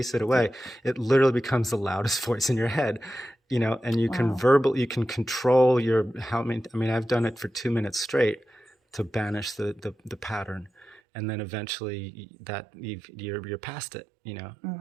it away, it literally becomes the loudest voice in your head, and you can you can control I've done it for 2 minutes straight to banish the pattern. And then eventually you're past it,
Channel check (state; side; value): drops out; left; at 11.0 s